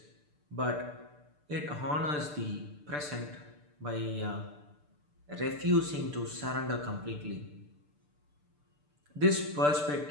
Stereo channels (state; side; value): late; left; 6.8 ms